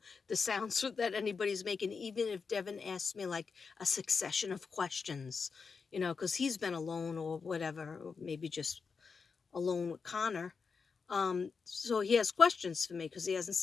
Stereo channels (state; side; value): quieter; right; 5.2 dB